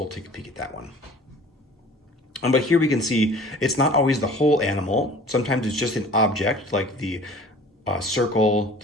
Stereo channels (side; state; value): both; normal; correlation 0.46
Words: take a peek at that one. But here we can see it's not always the whole animal. Sometimes it's just an object like the the